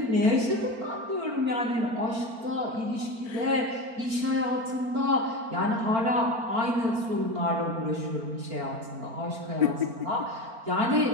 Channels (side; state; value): left; late; 4.4 ms